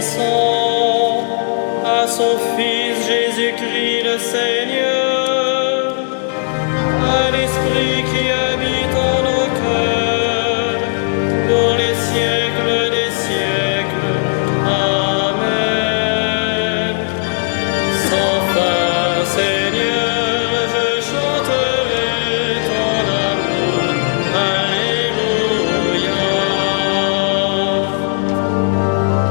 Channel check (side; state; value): right; silent; digital silence